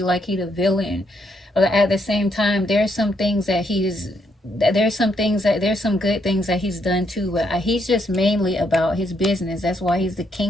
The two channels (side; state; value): both; normal; correlation 0.75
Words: like he the villain. But at the same time, there's some good things that he's done too, but he's just mainly about his business. That's why he's the